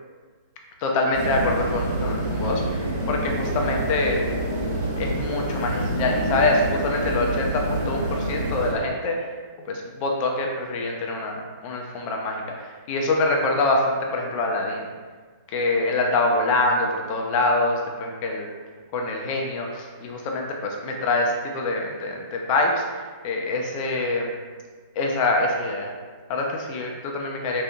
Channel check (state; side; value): inverted; both; correlation -0.34